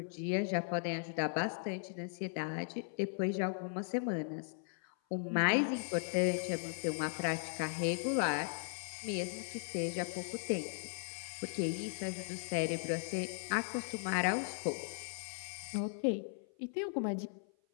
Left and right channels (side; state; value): right; silent; 53 dB below the other